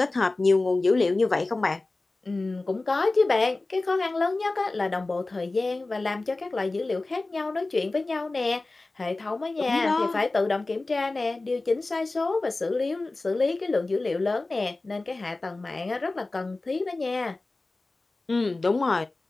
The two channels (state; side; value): quieter; right; 3.2 dB